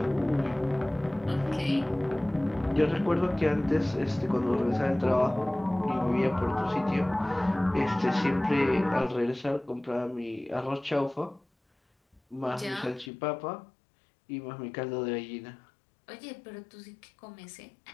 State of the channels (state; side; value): drops out; right; at 13.1 s